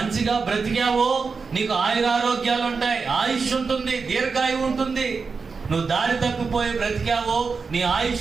బ్రతికావో నీకు ఆయురారోగ్యాలు ఉంటాయి, ఆయుష్ ఉంటుంది, దీర్ఘాయు ఉంటుంది. నువ్వు దారి తప్పిపోయి బ్రతికావో నీ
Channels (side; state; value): left; quieter; 4.9 dB